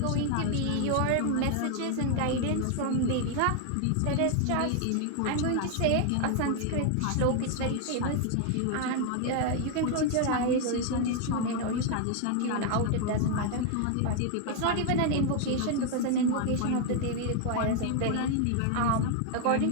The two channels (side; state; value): both; different; correlation 0.00